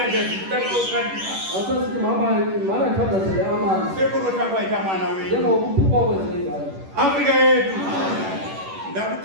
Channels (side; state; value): left; late; 10 ms